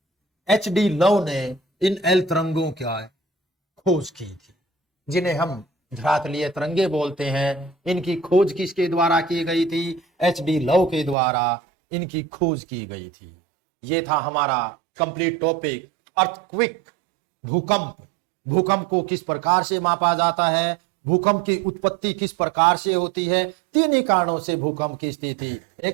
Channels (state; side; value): drops out; left; at 11.2 s